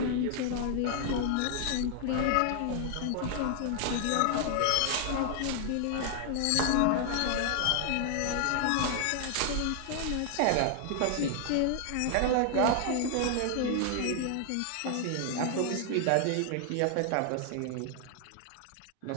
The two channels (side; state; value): both; different; correlation 0.00